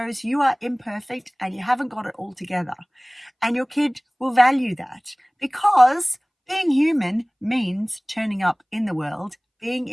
you are imperfect and you haven't got it all together. And your kid will value that, because being human means turning up in the world, being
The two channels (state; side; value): identical; both; correlation 1.00